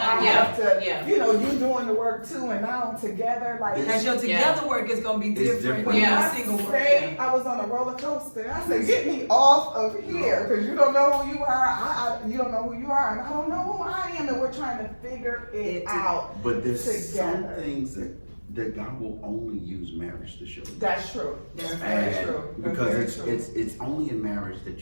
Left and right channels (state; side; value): inverted; both; correlation -1.00